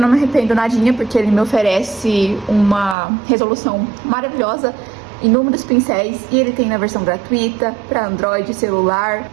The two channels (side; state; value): left; drops out; at 3.0 s